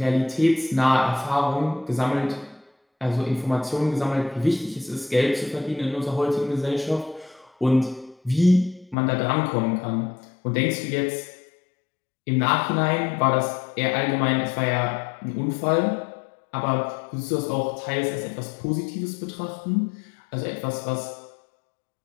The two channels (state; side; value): drops out; right; at 9.0 s